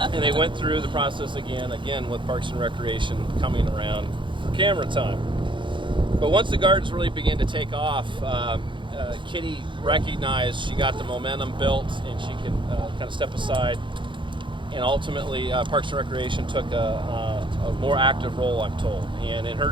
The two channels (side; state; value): left; late; 0.23 ms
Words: they went through the process again with Parks and Recreation coming around for camera time. But once the gardens really began to take off, Kitty recognized she got the momentum built and she could kind of step aside. And ultimately, Parks and Recreation took a more active role, I'm told. And in her